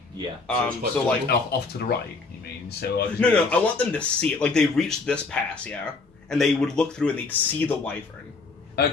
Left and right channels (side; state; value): right; quieter; 4.0 dB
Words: Yeah. So like Off to the right. You mean? So no. I want them to see it. Like they reach this pass, yeah, and they would look through and they'd see the wyvern.